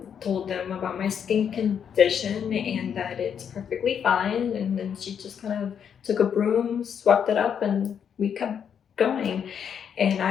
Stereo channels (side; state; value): right; quieter; 7.9 dB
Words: Told them about my skin condition and that it's perfectly fine. And then she just kind of took a broom, swept it up, and we kept going. And